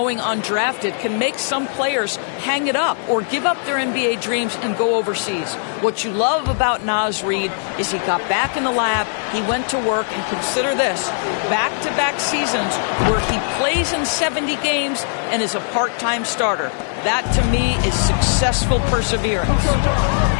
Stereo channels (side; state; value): right; silent; digital silence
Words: undrafted can make some players hang it up or give up their NBA dreams and go overseas. What you love about Naz Reid is he got back in the lab, he went to work, and consider this, back-to-back seasons where he plays in 70 games and is a part-time starter. That, to me, is successful perseverance.